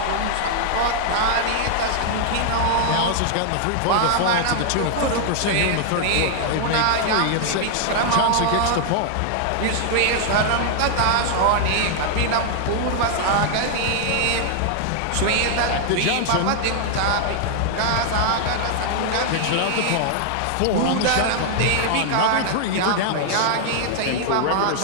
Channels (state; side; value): different; both; correlation 0.00